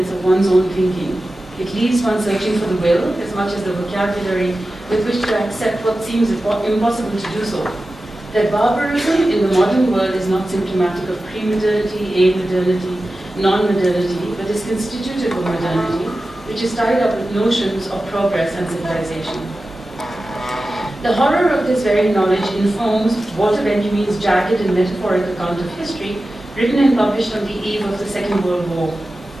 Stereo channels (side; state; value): both; normal; correlation 0.94